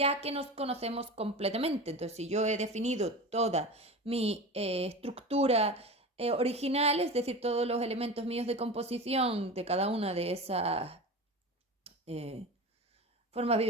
que nos conocemos completamente. Entonces, si yo he definido toda mi estructura original, es decir, todos los elementos míos de composición de cada una de esas eh, formas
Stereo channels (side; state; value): both; normal; correlation 0.29